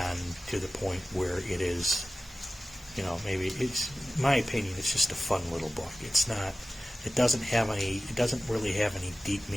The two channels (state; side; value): normal; both; correlation 0.95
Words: to the point where it is, maybe it's, in my opinion, it's just a fun little book. It doesn't really have any deep